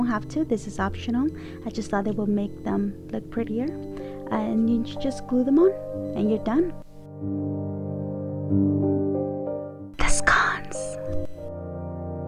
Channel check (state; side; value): identical; both; correlation 1.00